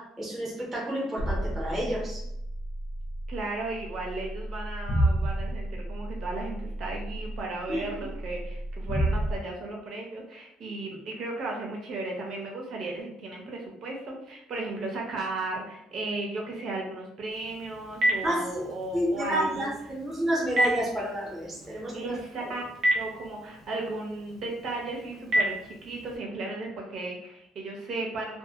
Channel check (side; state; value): both; normal; correlation 0.75